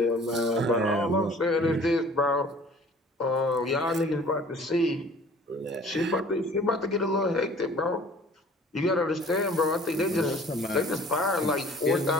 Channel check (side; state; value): both; normal; correlation 0.50